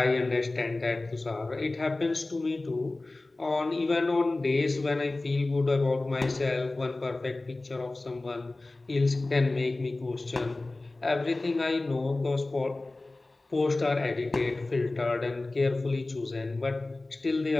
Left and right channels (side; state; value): right; quieter; 3.0 dB